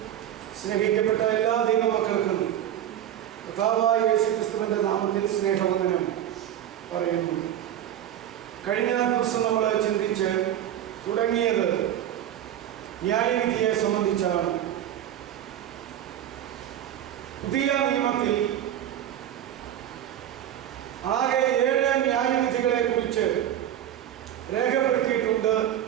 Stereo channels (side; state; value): left; quieter; 11.1 dB